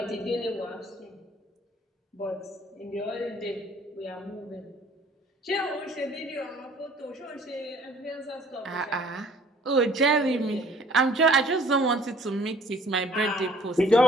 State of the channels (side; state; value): both; normal; correlation 0.55